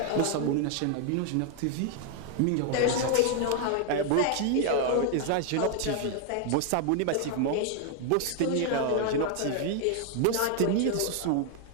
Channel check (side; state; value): both; different; correlation 0.00